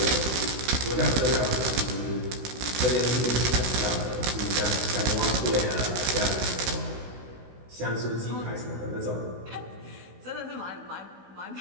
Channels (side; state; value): left; late; 16 ms